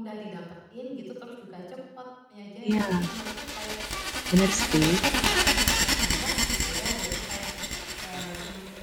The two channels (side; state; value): both; identical; correlation 1.00